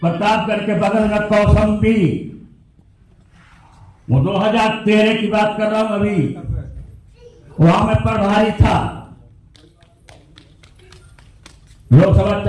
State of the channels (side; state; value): both; identical; correlation 1.00